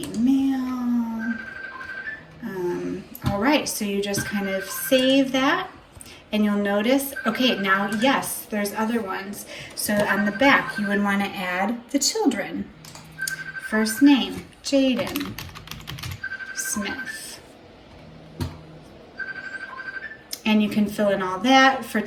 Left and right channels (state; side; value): identical; both; correlation 1.00